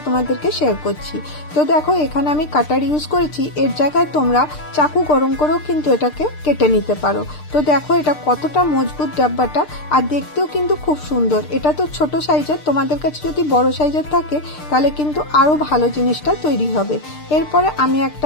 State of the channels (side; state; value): right; late; 6.6 ms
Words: তোমাদেরকে শেয়ার করছি। তো দেখো এখানে আমি কাটার ইউজ করেছি, এর জায়গায় তোমরা চাকু গরম করেও কিন্তু এটাকে কেটে নিতে পারো। তো দেখো এটা কতটা মজবুত ডাব্বাটা, আর দেখতেও কিন্তু খুব সুন্দর। এটা তো ছোট সাইজের, তোমাদের কাছে যদি বড় সাইজের থাকে তাহলে কিন্তু আরো ভালো জিনিসটা তৈরি হবে। এরপরে আমি